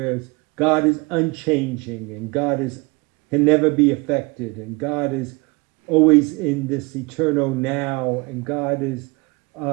God is unchanging and God is can never be affected and God is always in this eternal now and God is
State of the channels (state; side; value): quieter; left; 26.9 dB